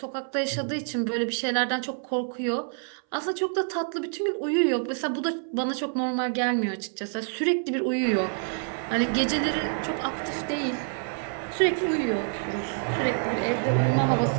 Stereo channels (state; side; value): silent; left; 60 dB below the other